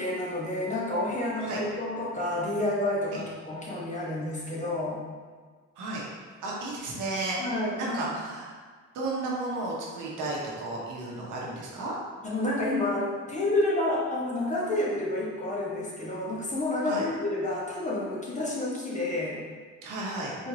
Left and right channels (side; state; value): both; normal; correlation 0.27